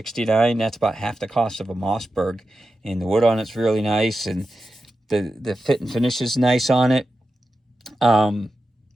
that's about half the cost of a Mossberg. And the wood on it's really nice, and the fit and finish is nice on it.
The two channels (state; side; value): normal; both; correlation 0.91